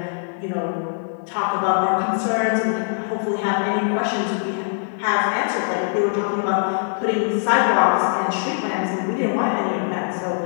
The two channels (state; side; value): silent; right; digital silence